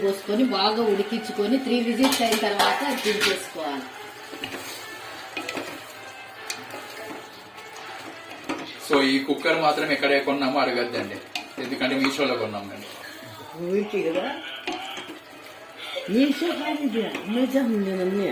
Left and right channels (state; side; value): identical; both; correlation 1.00